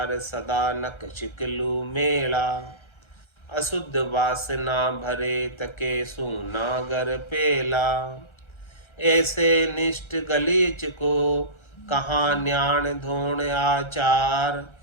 सदा नक चिकलू मेला। अशुद्ध वासना भरे, तके सूनागर पेला। ऐसे निष्ठ गलीच को, कहाँ न्याण धोण आचार।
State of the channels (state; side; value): late; right; 1.3 ms